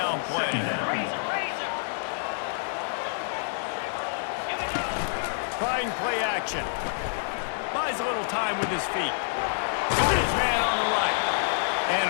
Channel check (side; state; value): right; silent; digital silence